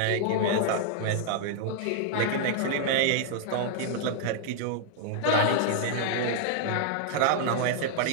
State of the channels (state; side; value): different; both; correlation -0.01